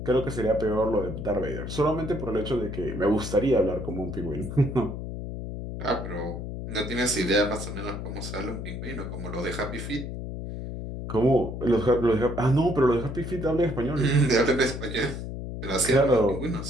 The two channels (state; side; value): noise; left; hum, 7 dB below the sound